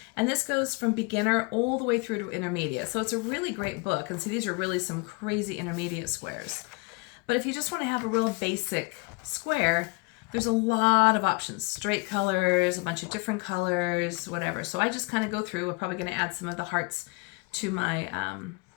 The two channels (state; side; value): quieter; right; 28.1 dB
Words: and this goes from beginner all the way through to intermediate. So it's a really great book. And see, these are really some crazy intermediate squares. But if you just want to have a real basic square, there's a lot of options. Straight colors, a bunch of different colors, whatever. So I just kind of go through. We're probably going to add some of the hearts to my